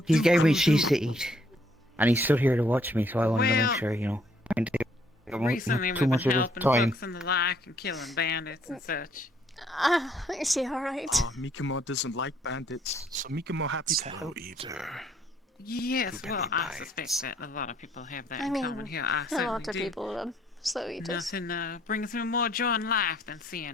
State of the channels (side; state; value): both; normal; correlation 0.66